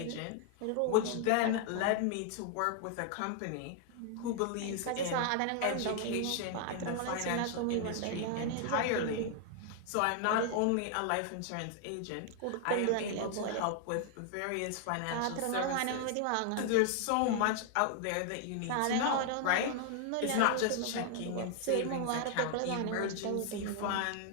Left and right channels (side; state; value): both; different; correlation 0.00